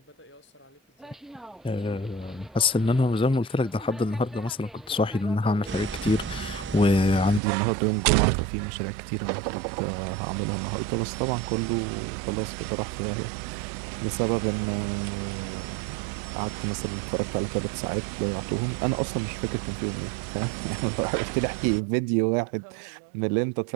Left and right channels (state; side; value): drops out; left; at 7.4 s